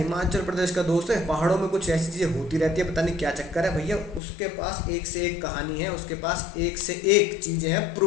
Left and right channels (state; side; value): drops out; right; at 4.2 s